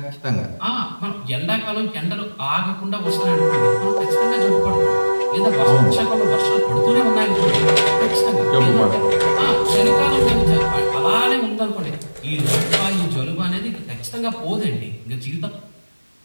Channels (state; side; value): inverted; both; correlation -1.00